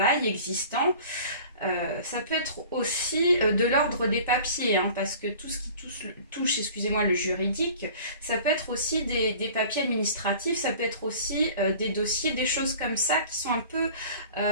existant. Ça peut être aussi de l'ordre des papiers, hein, parce que tout ce qui touche excusez-moi, le juridique, ça peut être aussi des papiers administratifs, ça peut être aussi des dossiers, des choses comme ça qui sont un peu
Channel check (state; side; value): inverted; both; correlation -0.45